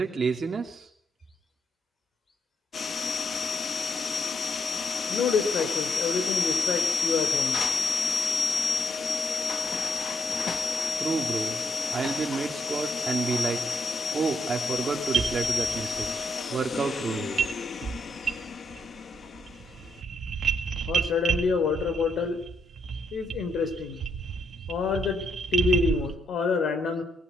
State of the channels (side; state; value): both; normal; correlation 0.76